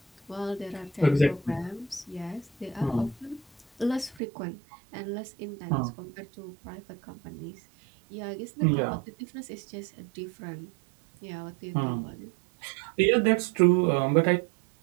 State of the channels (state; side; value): drops out; left; at 4.2 s